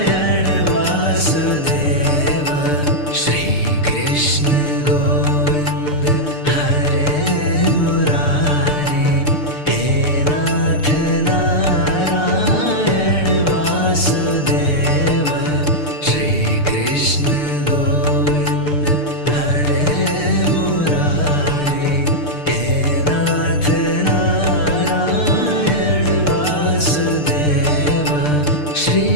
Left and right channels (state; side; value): late; right; 6.7 ms